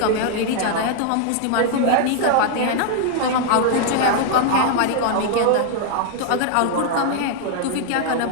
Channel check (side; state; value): both; different; correlation 0.00